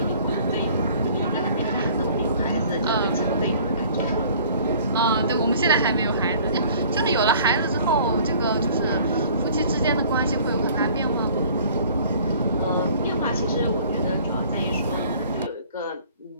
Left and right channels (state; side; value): inverted; both; correlation -0.52